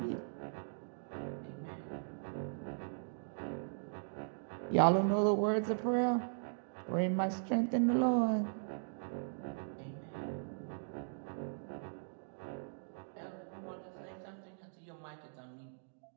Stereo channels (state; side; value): silent; left; digital silence